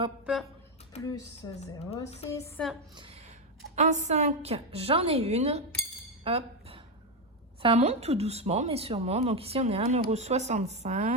Plus 0,6. En 5, j'en ai une. Hop. Ça monte tout doucement, mais sûrement. Donc ici, on est à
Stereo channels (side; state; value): both; normal; correlation 0.08